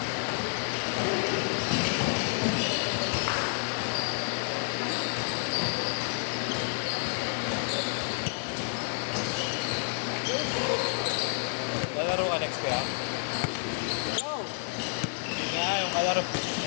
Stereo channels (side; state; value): right; silent; digital silence